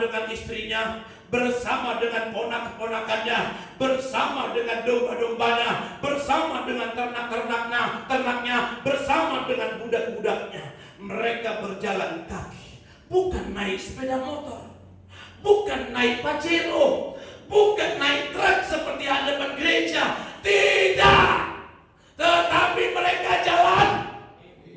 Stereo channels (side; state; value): both; identical; correlation 1.00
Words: istrinya, bersama dengan ponak-ponakannya, bersama dengan domba-dombanya, bersama dengan ternak-ternaknya, bersama dengan budak-budaknya. Mereka berjalan kaki, bukan naik sepeda motor, bukan naik Pajero, bukan naik truk seperti hadapan gereja. Tidak, tetapi mereka jalan